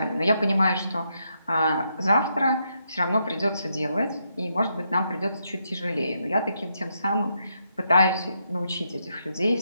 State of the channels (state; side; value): inverted; both; correlation -0.80